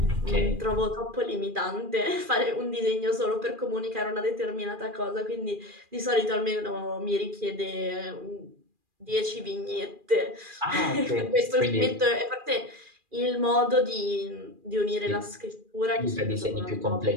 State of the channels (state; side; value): late; left; 2.4 ms